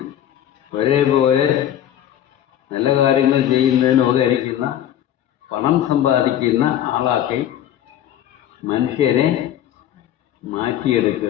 ഒരേപോലെ നല്ല കാര്യങ്ങൾ ചെയ്യുന്നതിന് ഉപകരിക്കുന്ന പണം സമ്പാദിക്കുന്ന ആളാക്കി മനുഷ്യരെ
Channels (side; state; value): right; quieter; 11.2 dB